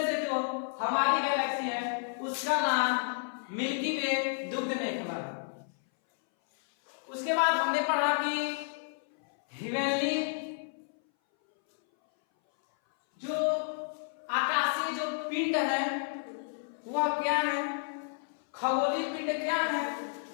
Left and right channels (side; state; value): right; silent; 57 dB below the other